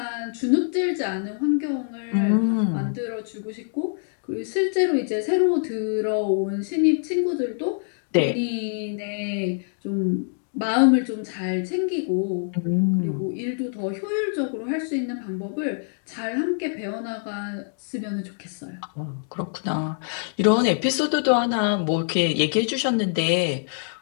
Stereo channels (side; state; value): right; silent; digital silence